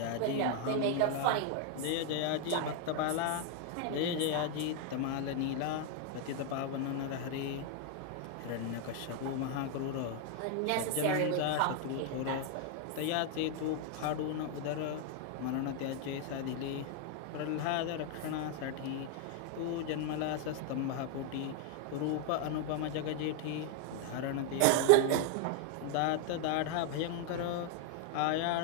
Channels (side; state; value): both; different; correlation 0.00